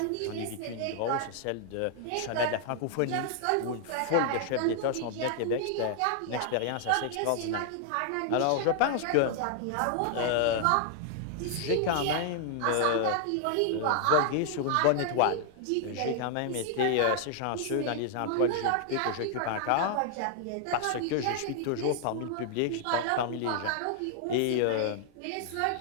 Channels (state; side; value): different; both; correlation 0.00